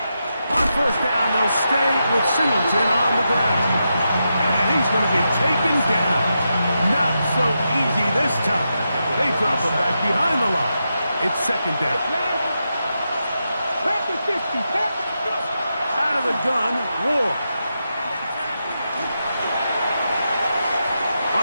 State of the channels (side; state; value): both; inverted; correlation -0.86